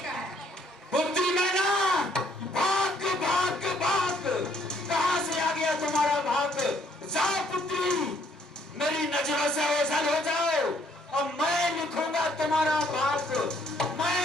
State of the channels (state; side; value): normal; both; correlation 0.65